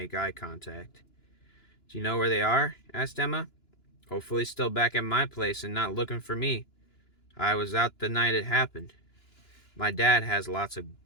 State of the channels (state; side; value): late; right; 2.9 ms